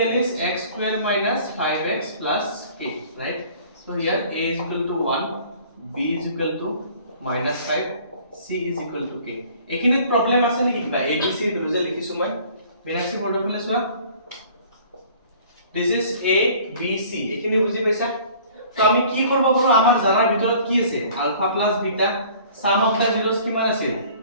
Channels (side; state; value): both; inverted; correlation -0.51